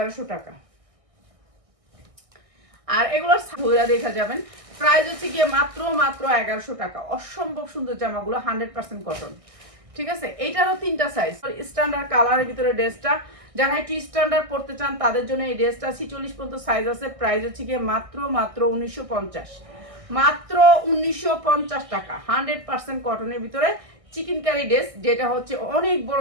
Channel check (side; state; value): left; late; 1.6 ms